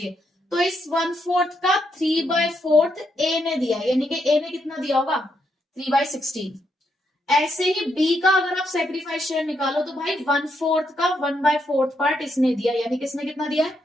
तो इस 1/4 का 3/4 ए ने दिया, यानी कि ए ने कितना दिया होगा? 3/16। ऐसे ही बी का अगर आप सैक्रिफाइस शेयर निकालो तो भाई 1/4 का 1/4 पार्ट इसने दिया, यानी किसने कितना दिया है?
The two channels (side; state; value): both; normal; correlation 0.79